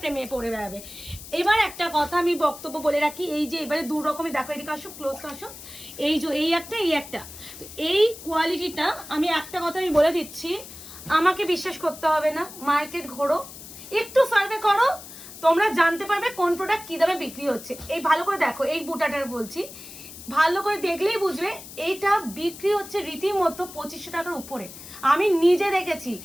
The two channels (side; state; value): left; noise; hiss, 15 dB below the sound